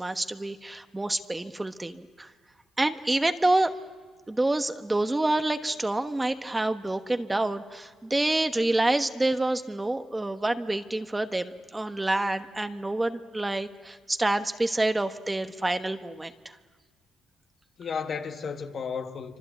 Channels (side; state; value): both; normal; correlation 0.98